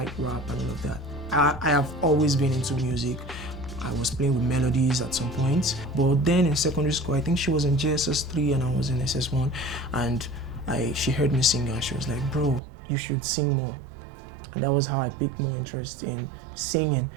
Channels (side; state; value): left; drops out; at 12.6 s